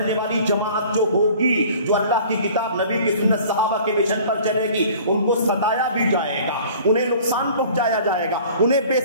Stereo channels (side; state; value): both; inverted; correlation -0.48